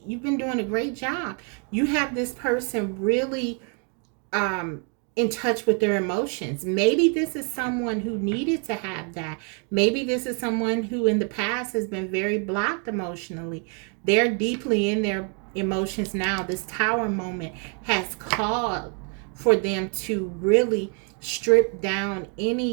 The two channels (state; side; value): quieter; left; 39.0 dB